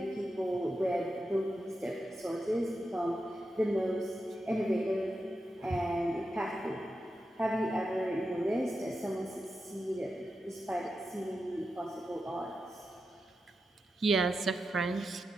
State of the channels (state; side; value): normal; both; correlation 0.89